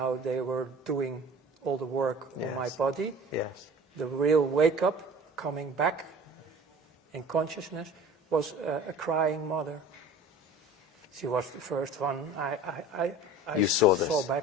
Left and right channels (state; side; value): normal; both; correlation 0.42